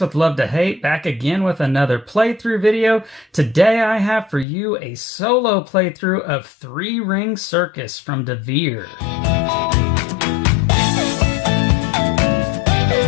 with Love to Hate, back again with another playthrough video. Today I have for you a solo playthrough of 3 Ring Circus from DeVere.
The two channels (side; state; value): right; drops out; at 4.5 s